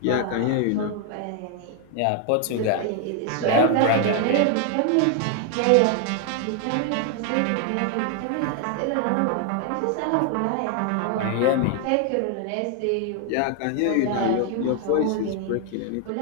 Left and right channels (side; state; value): both; different; correlation 0.00